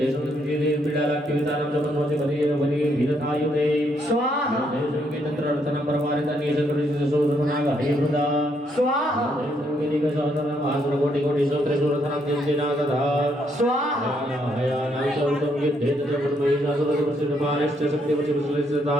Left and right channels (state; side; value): normal; both; correlation 0.73